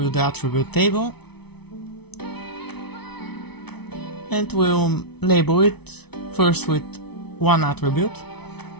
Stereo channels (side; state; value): right; late; 0.99 ms